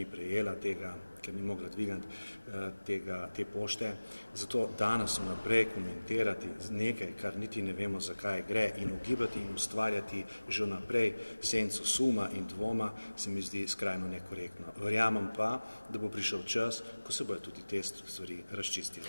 prejela tega, ker ni mogla dvigniti te pošte. Zato danes vnaprej komentirati nekaj, kar niti ne vemo, zakaj gre, in ugibati in ustvarjati že vnaprej senco suma in dvoma, se mi zdi skrajno nekorektno. Verjamem pa, da bo prišel čas, ko se bodo tudi te stvari razčistile.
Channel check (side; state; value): both; inverted; correlation -1.00